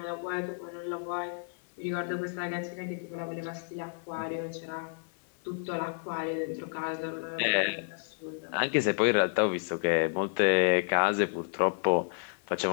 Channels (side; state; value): right; silent; 57 dB below the other